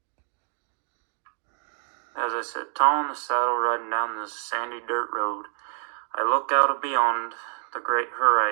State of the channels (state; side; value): silent; left; digital silence